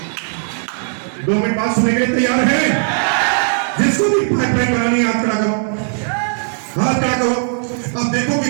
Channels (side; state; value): left; silent; 61 dB below the other